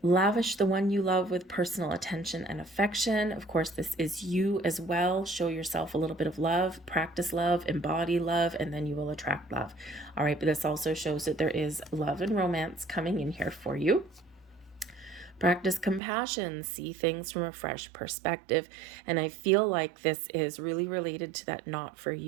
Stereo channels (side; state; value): left; drops out; at 16.0 s